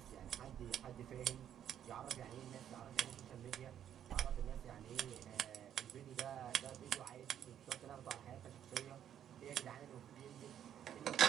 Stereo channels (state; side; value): quieter; left; 9.9 dB